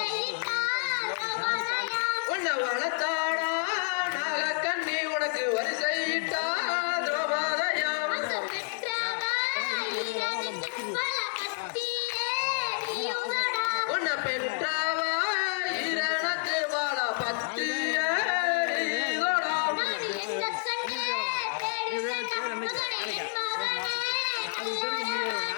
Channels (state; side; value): silent; right; digital silence